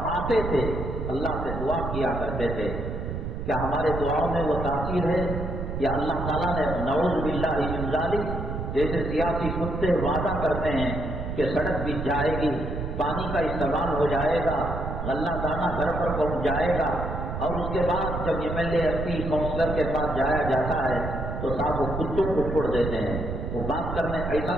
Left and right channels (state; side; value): noise; right; rumble, 5 dB below the sound